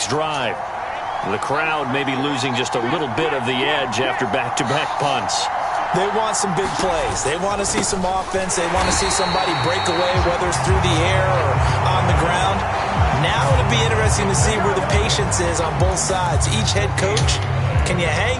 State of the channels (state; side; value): identical; both; correlation 1.00